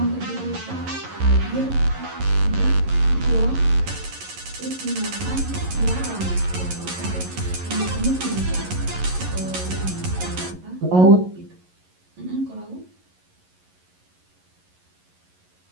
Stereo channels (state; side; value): late; left; 11 ms